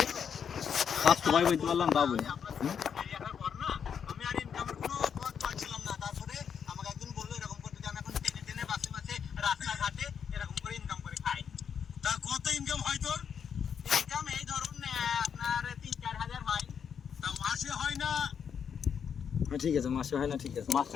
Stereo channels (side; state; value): right; quieter; 7.4 dB